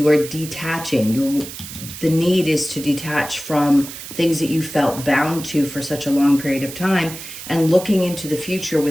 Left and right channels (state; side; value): noise; right; hiss, 11 dB below the sound